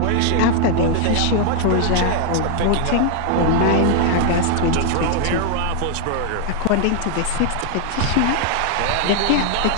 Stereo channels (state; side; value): different; both; correlation 0.00